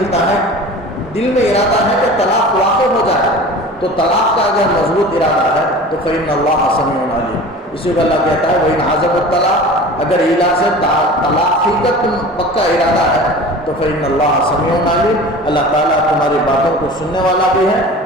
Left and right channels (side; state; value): both; normal; correlation 0.38